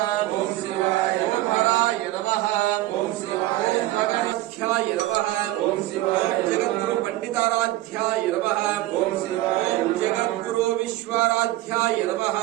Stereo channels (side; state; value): left; quieter; 16.6 dB